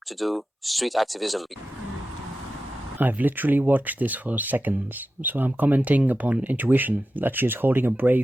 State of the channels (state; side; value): normal; both; correlation 0.92